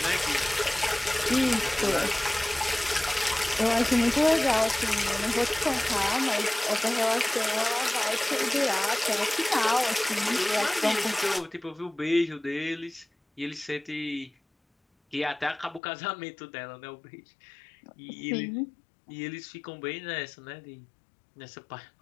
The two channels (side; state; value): right; drops out; at 15.8 s